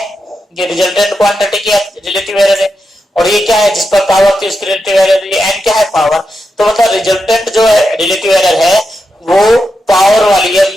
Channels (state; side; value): normal; both; correlation 0.87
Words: ये रिजल्टेंट क्वांटिटी की रिलेटिव एरर है, और ये क्या है, जिस पर पावर थी उसकी रिलेटिव एरर, ये n क्या है, पावर। तो मतलब रिजल्टेंट जो है रिलेटिव एरर है वो पावर वाली है,